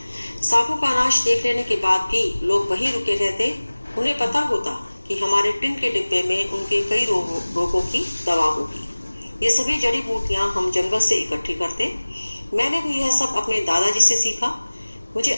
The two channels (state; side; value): inverted; both; correlation -1.00